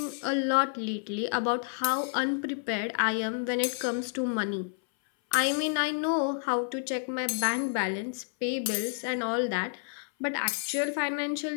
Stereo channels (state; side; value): silent; right; 58 dB below the other